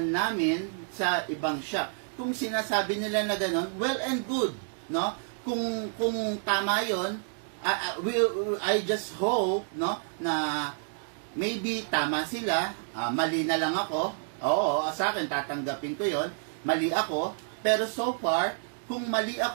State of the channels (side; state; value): left; silent; digital silence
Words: namin sa ibang shop. Kung sinasabi nila na gano'n, well and good, no? Kung tama 'yon, I just hope, no, na maybe tama sila, mali na lang ako. Oo, sa akin tatanggapin ko 'yon. Mali ako, pero so far, kung mali